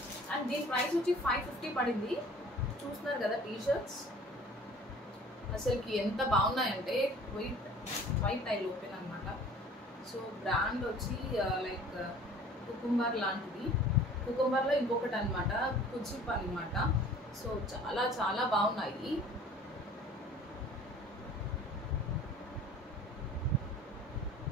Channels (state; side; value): normal; both; correlation 0.48